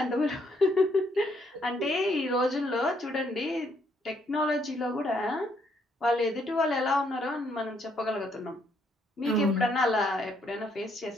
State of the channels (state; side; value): normal; both; correlation 0.71